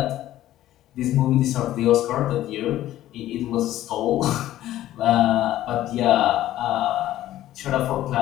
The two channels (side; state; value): right; quieter; 13.9 dB